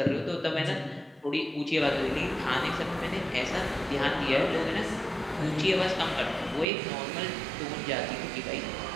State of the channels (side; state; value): left; drops out; at 6.7 s